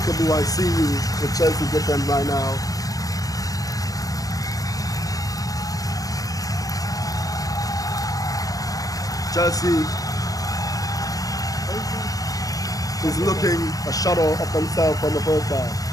I see you with Chelsea defense right now. Chelsea is looking a shadow of themselves from the first half.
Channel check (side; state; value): right; late; 0.17 ms